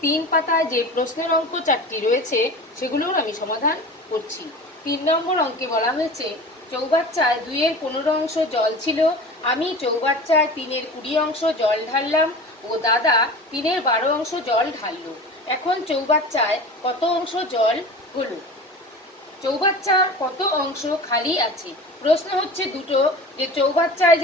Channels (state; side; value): normal; both; correlation 0.35